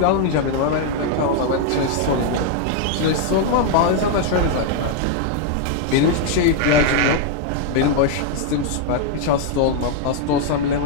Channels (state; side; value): different; both; correlation 0.00